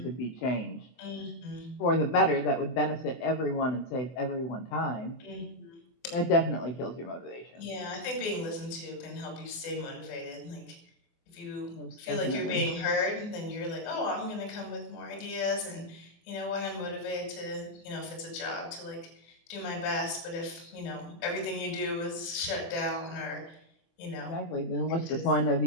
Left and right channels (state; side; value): late; right; 24 ms